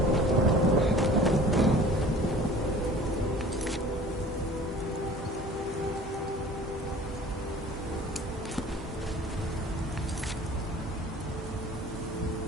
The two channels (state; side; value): normal; both; correlation 0.45